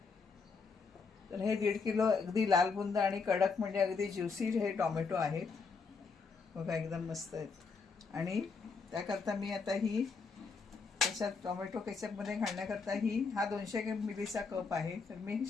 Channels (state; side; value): quieter; right; 4.8 dB